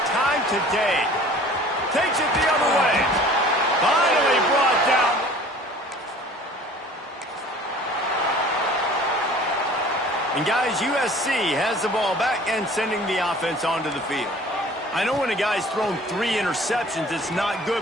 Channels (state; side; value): normal; both; correlation 0.48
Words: time today. Takes it the other way. Finally brought down. And guys, USC has the ball back and sending the offense onto the field. I know when a guy's thrown 3 interceptions, it's not good,